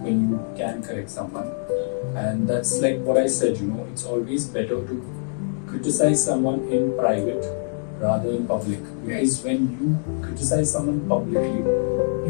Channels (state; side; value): silent; right; digital silence